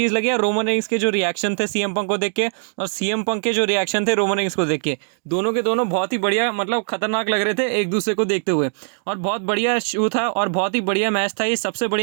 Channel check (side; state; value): left; silent; digital silence